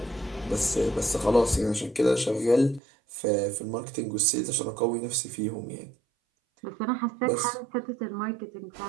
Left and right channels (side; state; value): left; drops out; at 2.8 s